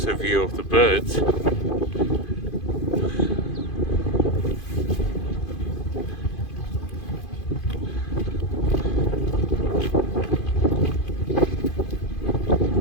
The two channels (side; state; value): right; late; 2.5 ms